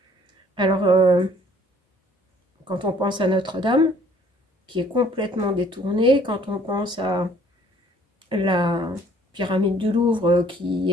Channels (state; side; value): normal; both; correlation 0.58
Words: Alors, quand on pense à Notre-Dame, qui est complètement détournée, quand on pense à la pyramide du Louvre, qui